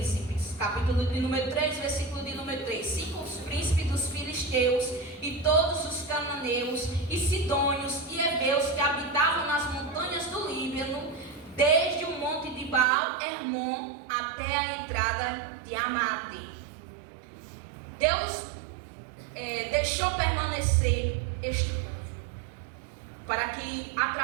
Capítulo de número 3, versículo de número 3. 5 os príncipes dos filisteus e todos os cananeus e sidônios e heveus que habitavam nas montanhas do Líbano, desde o monte de Baal Hermon até a entrada de Amate. Deus deixou permanecer este povo, para que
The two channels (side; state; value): left; drops out; at 12.9 s